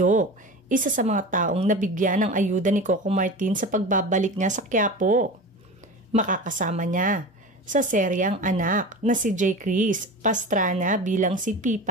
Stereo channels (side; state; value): both; normal; correlation 0.31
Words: isa sa mga taong nabigyan ng ayuda ni Coco Martin sa pagbabalik niya sa Quiapo. Makakasama niya sa seryang anak na si J. Chris Pastrana bilang si